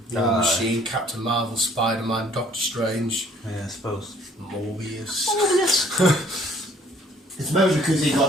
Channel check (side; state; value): both; normal; correlation 0.58